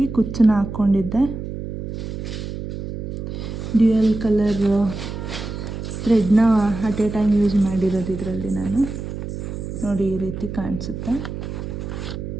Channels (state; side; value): noise; right; hum, 7 dB below the sound